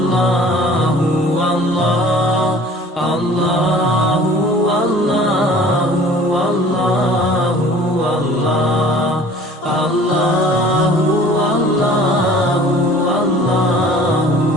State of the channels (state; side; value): normal; both; correlation 0.49